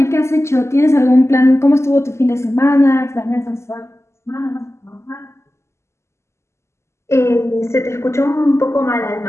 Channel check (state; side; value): late; right; 0.13 ms